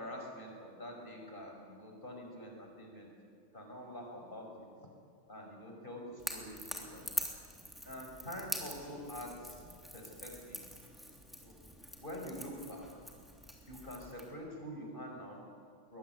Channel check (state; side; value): normal; both; correlation 0.34